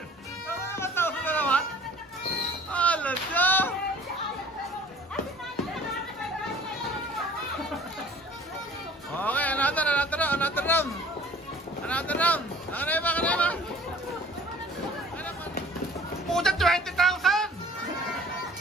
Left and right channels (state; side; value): normal; both; correlation 0.49